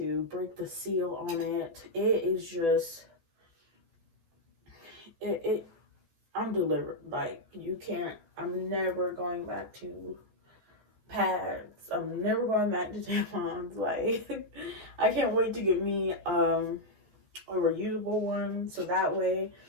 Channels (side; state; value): left; late; 14 ms